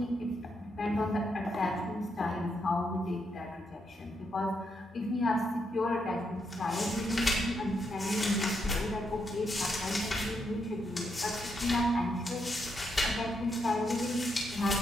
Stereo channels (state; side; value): normal; both; correlation 0.80